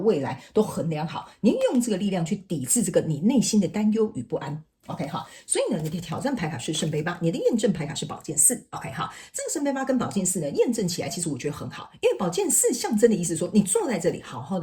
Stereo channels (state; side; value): identical; both; correlation 1.00